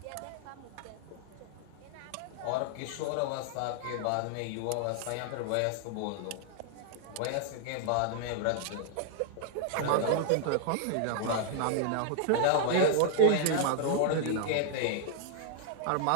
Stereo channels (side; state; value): both; different; correlation -0.01